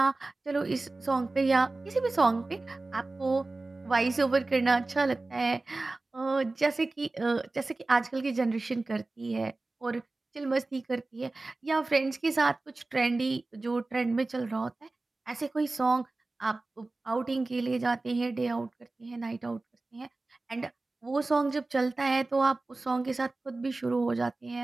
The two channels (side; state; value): left; quieter; 3.2 dB